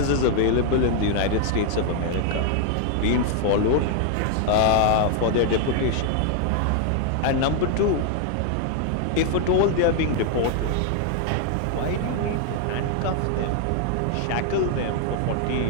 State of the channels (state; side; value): different; both; correlation 0.00